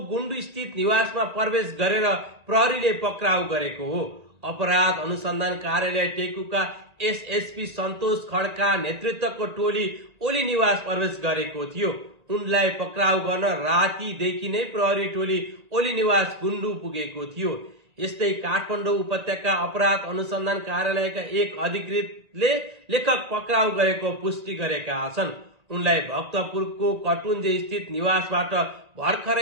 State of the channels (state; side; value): late; left; 1.8 ms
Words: गुण्डु स्थित निवासमा प्रवेश गरेर प्रहरीले पक्राउ गरेको हो। अपराध अनुसन्धान कार्यालय टेकुका एसएसपी सन्तोष खड्का नेतृत्वको टोली ओली निवास प्रवेश गरेको थियो। उनलाई पक्राउ गर्न रातिदेखि नै प्रहरी टोली ओली निवास गुण्डु पुगेको थियो। यस्तै काठमाडौँ उपत्यका अपराध अनुसन्धान कार्यालयका एक अधिकृतले लेखक पक्राउ गरेको पुष्टि गरेका छन्। उनलाई भक्तपुरको कटुन्जे स्थित निवासबाट